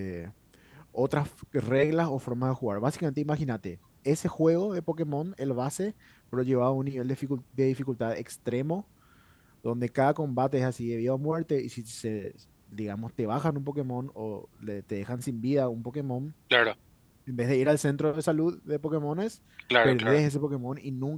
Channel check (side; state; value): both; identical; correlation 1.00